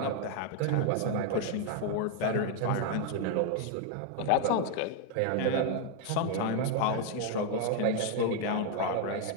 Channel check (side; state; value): both; different; correlation 0.01